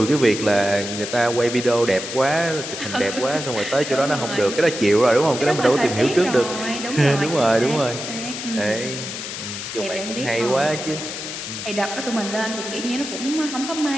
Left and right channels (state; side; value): noise; left; hiss, 7 dB below the sound